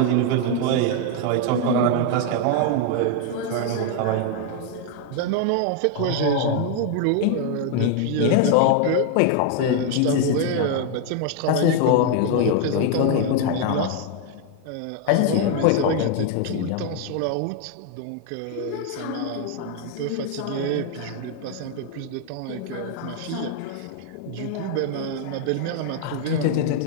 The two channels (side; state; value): both; different; correlation 0.01